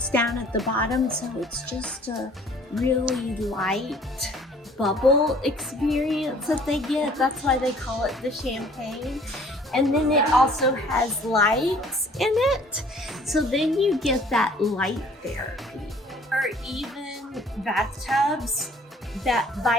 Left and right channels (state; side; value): normal; both; correlation 0.55